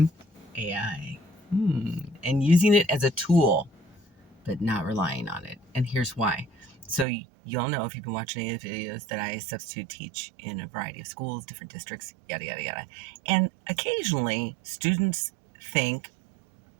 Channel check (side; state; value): left; drops out; at 7.1 s